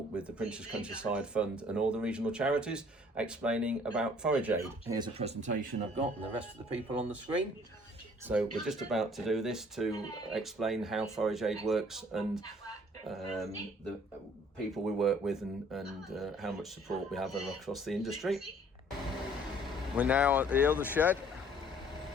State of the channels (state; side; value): normal; both; correlation 0.57